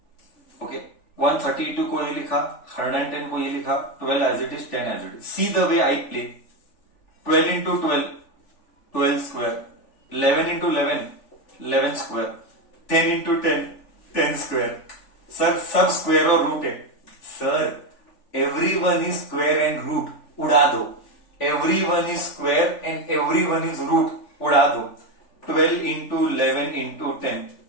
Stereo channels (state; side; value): late; right; 3.4 ms